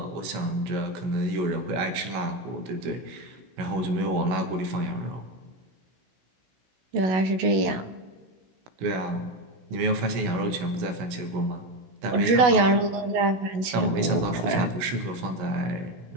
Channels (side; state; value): left; late; 16 ms